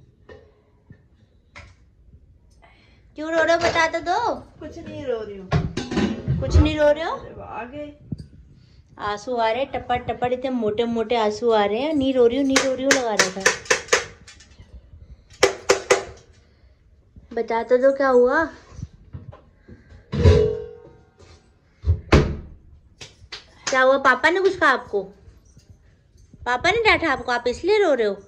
क्यों रो रहे हो, बता तो दो। कुछ नहीं रो रही हूँ। कुछ नहीं रो रहे हो? आ गए आंसू आ रहे, टपट टपट इतने मोटे मोटे आंसू आ रहे हैं। नहीं रो रही हूँ, नहीं रो रही हूँ लगा रखा है। बता तो दो क्या हुआ। क्या हुआ? पापा ने कुछ कहा आपको? पापा ने डांटा आपको, आप इसलिए रो रहे हो?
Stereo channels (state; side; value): identical; both; correlation 1.00